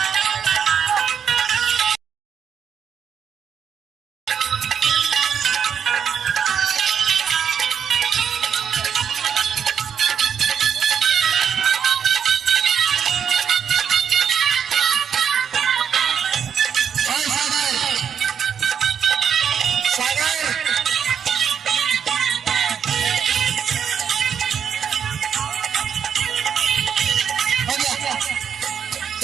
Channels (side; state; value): left; quieter; 7.7 dB